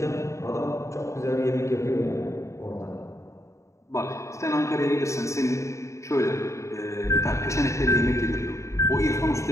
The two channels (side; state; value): right; late; 0.14 ms